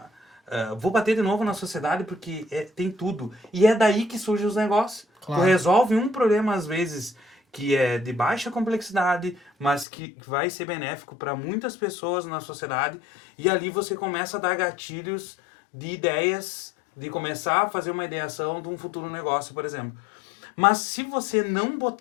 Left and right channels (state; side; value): drops out; right; at 9.9 s